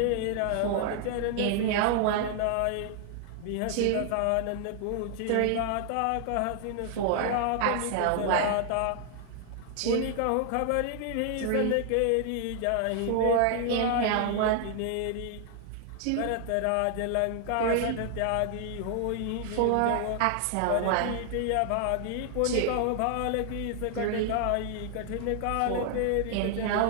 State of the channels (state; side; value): different; both; correlation 0.00